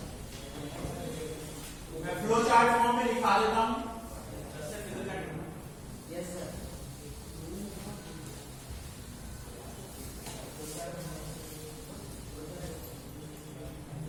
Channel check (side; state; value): both; identical; correlation 1.00